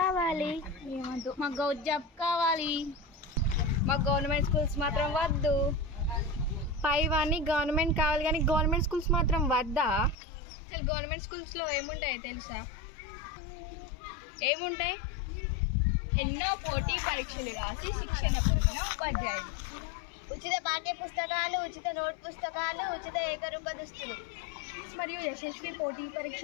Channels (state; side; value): drops out; right; at 10.2 s